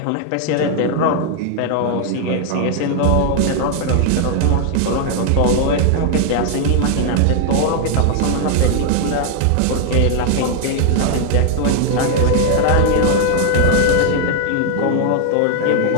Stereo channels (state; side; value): different; both; correlation 0.00